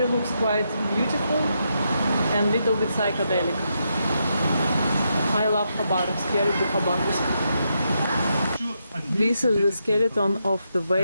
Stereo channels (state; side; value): inverted; both; correlation -0.82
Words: looks quite beautiful and little bit psychedelic. I love Khabarovsk. Я люблю Khabarovsk. This is the skeleton of the